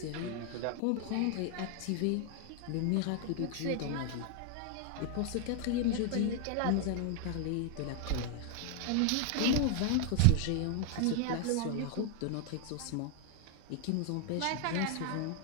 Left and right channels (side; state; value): both; different; correlation 0.00